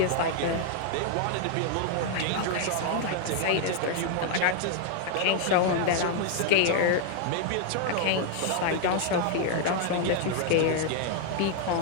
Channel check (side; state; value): both; different; correlation 0.00